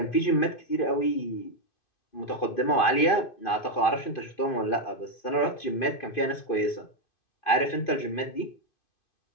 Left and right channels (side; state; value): right; late; 2.5 ms